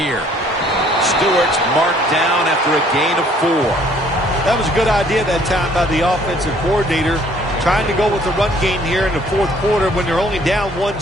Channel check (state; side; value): normal; both; correlation 0.60